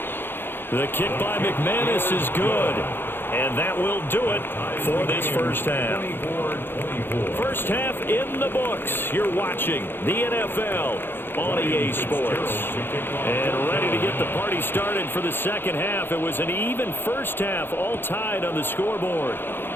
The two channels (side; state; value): right; late; 0.10 ms